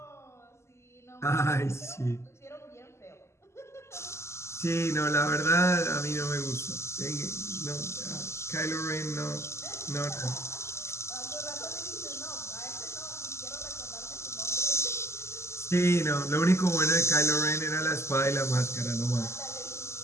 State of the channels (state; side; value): late; right; 0.13 ms